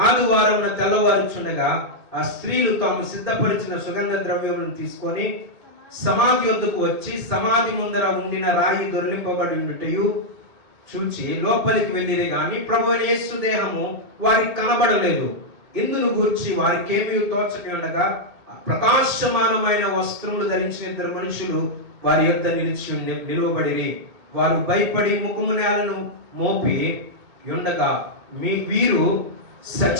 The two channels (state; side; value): late; left; 2.4 ms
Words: ఆదివారం తెల్లవారుచుండగా ఆ స్త్రీలు తాము సిద్ధపరిచిన సుగంధ ద్రవ్యములను తీసుకొని సమాధి వద్దకు వచ్చి సమాధి ముందర ఉండిన రాయి దొర్లింపబడి ఉన్నట్టు చూచి లోపలికి వెళ్ళిరే గాని ప్రభువు యేసు దేహము వారికి కనబడలేదు. ఇందును గూర్చి వారికేమీ తోచక ఉండగా ప్రకాశమానమైన వస్త్రములు ధరించిన 2 మనుషులు వారి యొద్ద నిలువబడిరి. వారు భయపడి ముఖము నేలను మోపి ఉండగా వీరు